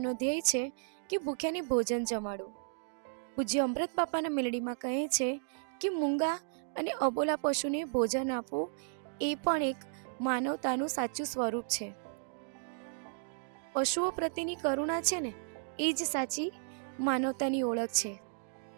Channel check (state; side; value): silent; left; digital silence